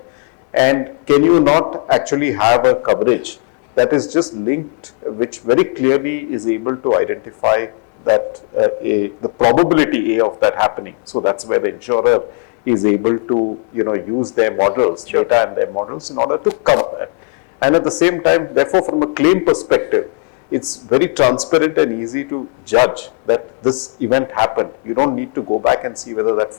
And can you not actually have a coverage that is just linked, which very clearly is able to identify that the probability of that happening. So that's where the insurer is able to, use their models, data and their models in order to cover that. And at the same time, therefore, from a claim perspective, it's very transparent and easy to judge that this event happened. You don't need to go back and see whether that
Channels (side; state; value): right; quieter; 39.1 dB